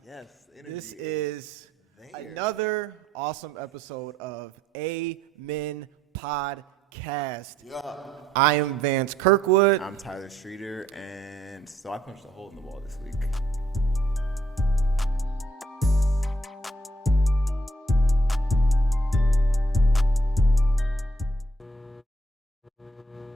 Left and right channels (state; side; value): normal; both; correlation 0.70